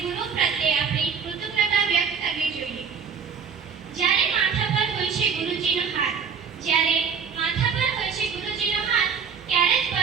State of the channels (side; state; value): left; quieter; 6.4 dB